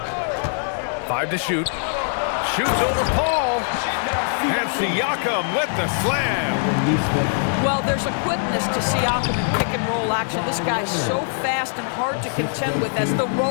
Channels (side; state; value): right; silent; digital silence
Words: Five to shoot. Shoots over Paul. And Siakam with the slam. Well, there's a quickness to Siakam in pick and roll action. This guy's so fast and hard to contend with as the